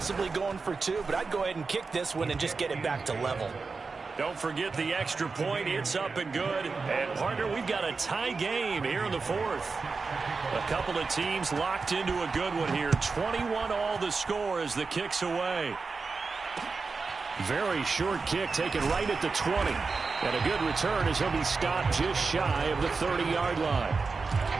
going for 2, but I'd go ahead and kick this one and just get it back to level. Don't forget the extra point. It's up and good. And, partner, we've got a tie game here in the 4th. A couple of teams locked into a good one here. 21 all the score as the kick's away. Very short kick taken right at the 20. And a good return as he'll be stopped just shy of the 30-yard line.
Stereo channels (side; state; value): left; quieter; 4.4 dB